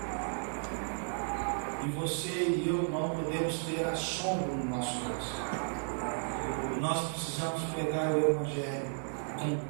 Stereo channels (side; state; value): left; silent; 55 dB below the other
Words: E você e eu não podemos ter assombro no nosso coração. Nós precisamos pegar o Evangelho